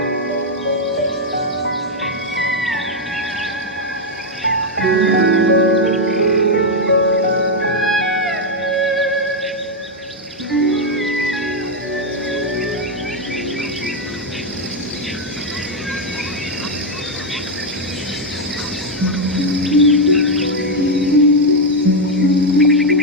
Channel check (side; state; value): both; normal; correlation 0.02